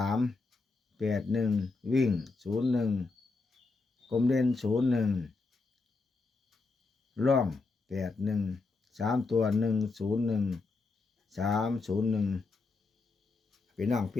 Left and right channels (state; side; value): quieter; right; 3.8 dB